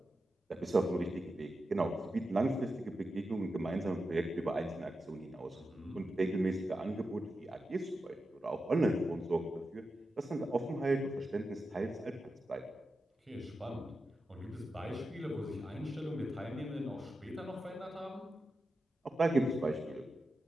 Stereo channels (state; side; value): normal; both; correlation 0.90